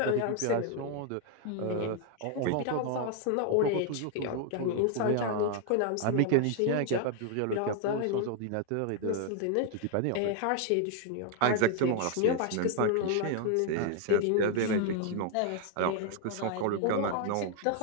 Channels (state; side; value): different; both; correlation 0.00